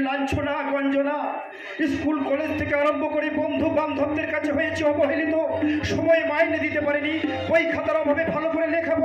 লাঞ্ছনা গঞ্জনা। স্কুল কলেজ থেকে আরম্ভ করে বন্ধু বান্ধবদের কাছে হয়েছে অবহেলিত, সময় মাইনে দিতে পারিনি, বই খাতার অভাবে ভালো করে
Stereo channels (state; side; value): identical; both; correlation 1.00